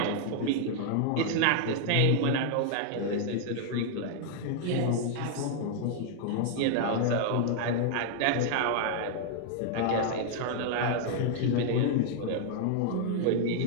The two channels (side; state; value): both; different; correlation 0.00